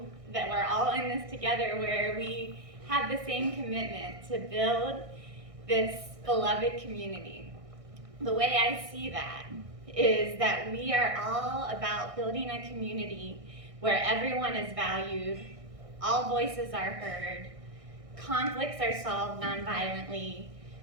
that we're all in this together, where we have the same commitment to build this beloved community. The way I see that is that we are all about building a community where everyone is valued, all voices are heard, conflicts are solved nonviolently,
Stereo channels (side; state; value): left; late; 1.6 ms